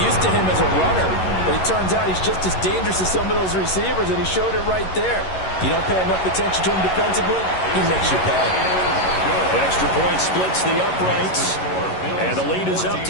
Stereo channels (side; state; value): right; late; 11 ms